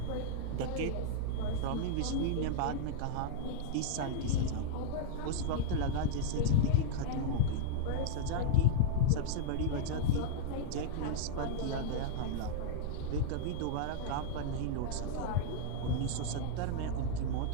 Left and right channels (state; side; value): different; both; correlation -0.02